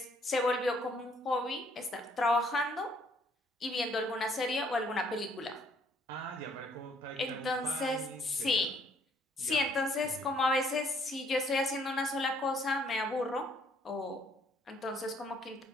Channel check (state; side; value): normal; both; correlation 0.65